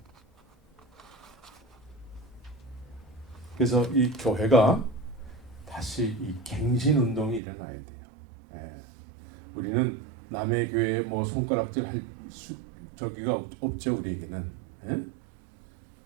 그래서 이 교회가 다시 이 갱신 운동이 일어나야 돼요. 예. 우리는 남의 교회에 뭐 손가락질 할 저기가 없죠, 우리에게는. 예?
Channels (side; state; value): left; drops out; at 7.4 s